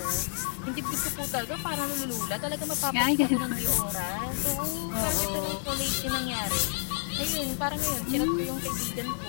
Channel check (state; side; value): silent; right; digital silence